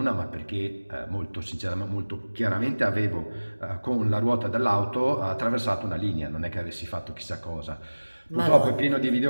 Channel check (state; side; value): inverted; both; correlation -1.00